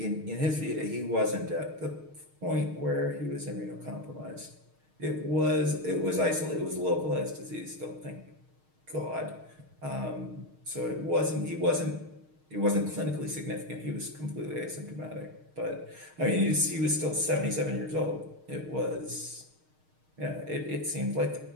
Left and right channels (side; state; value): left; late; 6.5 ms